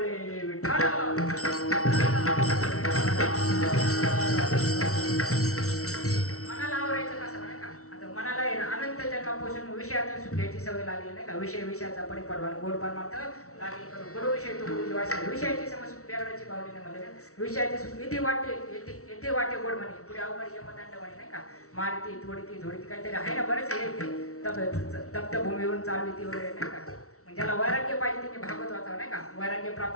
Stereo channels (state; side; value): late; right; 0.64 ms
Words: विठ्ठल मनाला आवरायचं कसं नाही का आता मनाला आहे ना अनंत जन्मापासून विषयातून सुखायची सवय लागली नाही का विषयाचा परिपडवान गोड परमार्थ लागली करू गुरु विषय तो गुरुजी वाचा विषयाची समज ड्रायव्हरची बावली नाही म्हणले विषयाचे इथे वाटे येथे वाटे गोड म्हणे पुढे अवघड यमदंड म्हणे नाही का मारती थोडी काहीतरी आहे ना बरेच हे तप्त भूमीवरून चालविती वगैरे नाही का ज्याला वैराग्य पाहिजे त्यांनी भागवत वाचावं नाही का वैराग्य